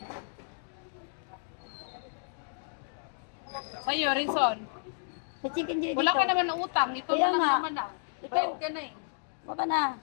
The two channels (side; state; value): right; silent; digital silence